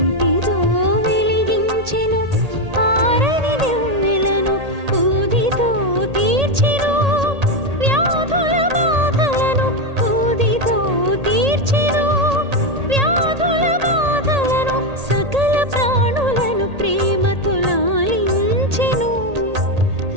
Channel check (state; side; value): late; left; 1.8 ms